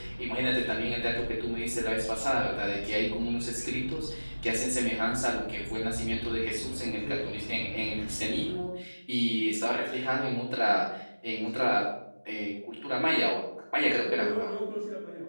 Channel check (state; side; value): inverted; both; correlation -1.00